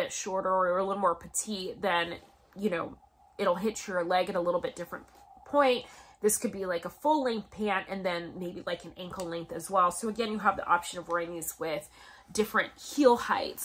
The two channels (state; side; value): identical; both; correlation 1.00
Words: shorter or a little more petite, then, you know, it'll hit your leg at a little bit different point. This could be like a full length pant and then maybe like an ankle length as well. So again, you have the option of wearing these with different heel